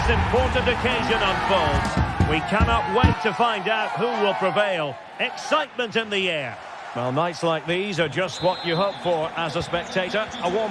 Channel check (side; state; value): both; identical; correlation 1.00